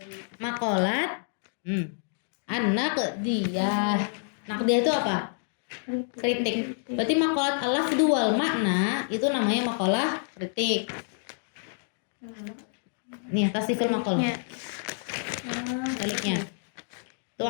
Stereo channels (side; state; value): right; silent; digital silence